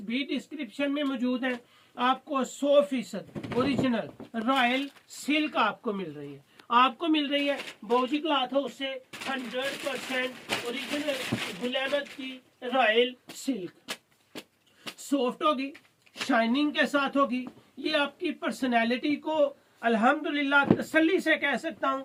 भी डिस्क्रिप्शन में मौजूद है। आपको 100% ओरिजिनल रॉयल सिल्क आपको मिल रही है, आपको मिल रही है बोजी क्लॉथ हाउस से 100% ओरिजिनल गुल अहमद की रॉयल सिल्क। सॉफ्ट होगी, शाइनिंग के साथ होगी। ये आपकी पर्सनैलिटी को अल्हम्दुलिल्लाह तसल्ली से कह सकता हूं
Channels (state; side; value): identical; both; correlation 1.00